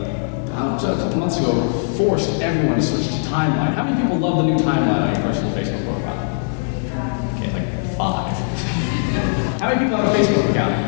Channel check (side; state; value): right; silent; 64 dB below the other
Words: about a couple months ago, forced everyone to switch to timeline. How many people love the new timeline on your personal Facebook profile? Okay, like 5. How many people have a Facebook account?